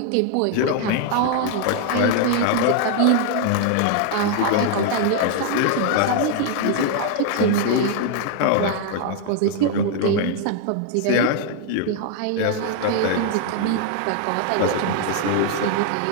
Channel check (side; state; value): both; different; correlation 0.00